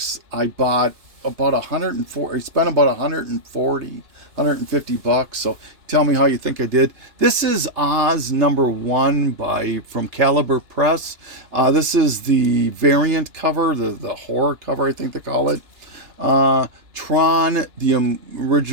I bought about 140. I spent about 150 bucks. So tell me how you think I did. This is Oz number 1 from Caliber Press. This is the variant cover, the horror cover, I think they call it. Tron, the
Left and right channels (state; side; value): late; left; 2.9 ms